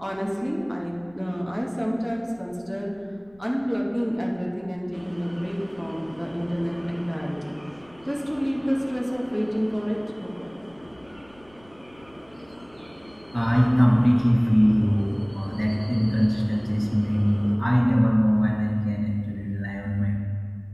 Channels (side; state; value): left; noise; rumble, 28 dB below the sound